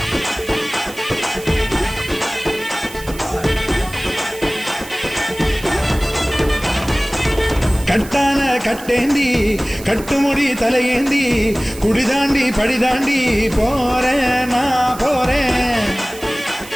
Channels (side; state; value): right; noise; hiss, 16 dB below the sound